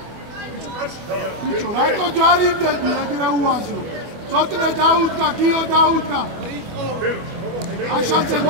ბიჭო, რატო ჯარიმდები ეგრე უაზრო? ცოტნე დაუდგა, გიო დაუდგა. აშანცე,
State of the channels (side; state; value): left; late; 25 ms